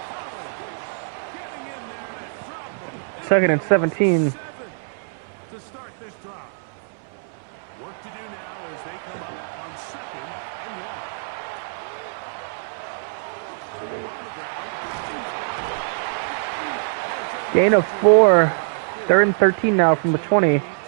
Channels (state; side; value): silent; left; 63 dB below the other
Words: Collins getting in there to drop them. Second and 17. 7 to start this drive. Work to do now as they come up on second and 1. Gain of 4. 3rd and 13 now from the 20. To